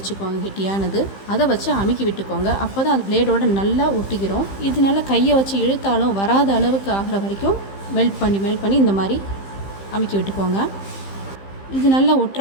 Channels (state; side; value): late; right; 15 ms